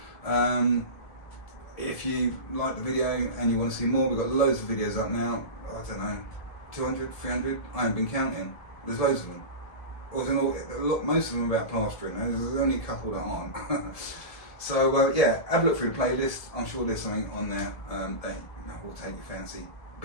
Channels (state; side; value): late; right; 1.7 ms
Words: If you like the video and you want to see more, we've got loads of videos up now. I don't know, 200, 300, I haven't been counting. There's loads of them. Most of them are about plastering. There's only a couple that aren't. So yeah, have a look through the playlist. I'm sure there's something on there that will take your fancy,